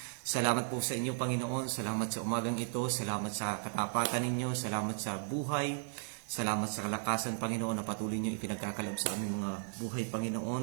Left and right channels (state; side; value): silent; left; digital silence